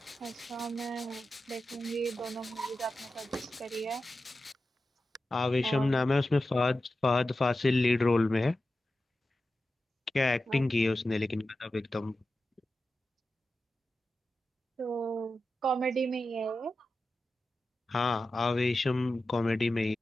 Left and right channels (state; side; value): normal; both; correlation 0.92